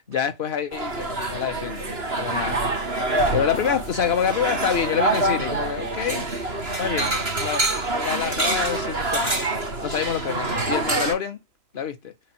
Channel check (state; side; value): late; left; 2.9 ms